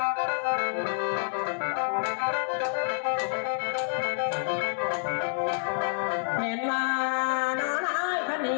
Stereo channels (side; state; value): right; silent; 59 dB below the other